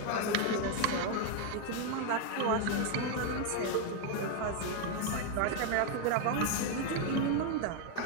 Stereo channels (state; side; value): different; both; correlation 0.01